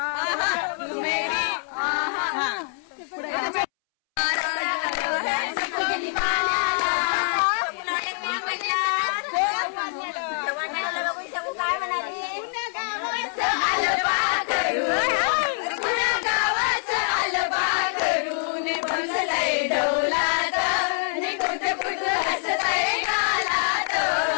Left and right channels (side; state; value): right; silent; 62 dB below the other